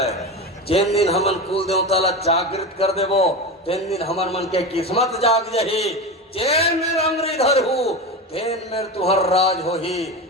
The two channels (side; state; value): both; normal; correlation 0.23